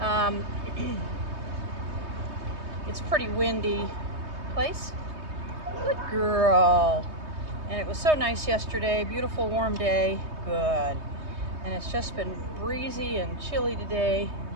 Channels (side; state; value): left; late; 3.2 ms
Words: It's pretty windy. Place. Good girl. And it was so nice yesterday. Beautiful warm day. Good. And it's just been breezy and chilly today.